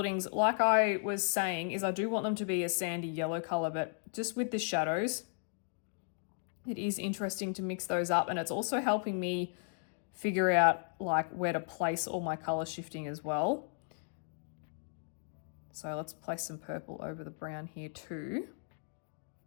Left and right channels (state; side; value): silent; right; digital silence